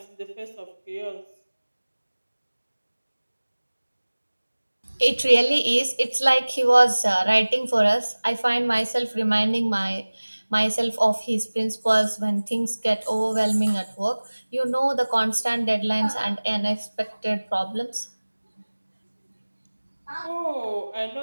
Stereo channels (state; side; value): inverted; both; correlation -1.00